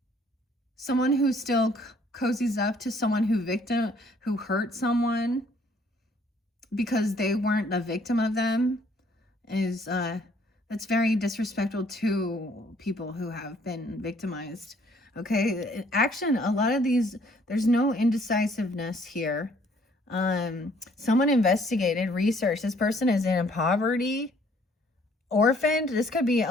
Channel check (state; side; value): normal; both; correlation 0.62